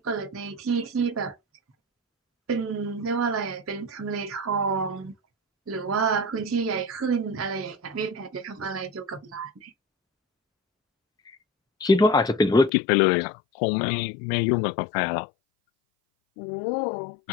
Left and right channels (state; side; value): drops out; right; at 12.7 s